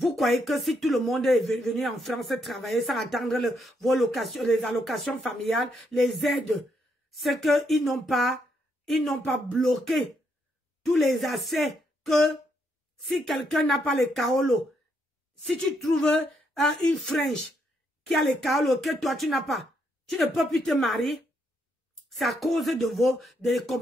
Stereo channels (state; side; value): normal; both; correlation 0.76